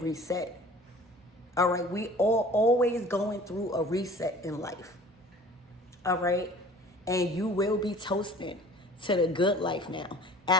All right, we are always going through a reset in life. All right, and you will be toasted to the good life now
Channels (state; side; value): normal; both; correlation 0.46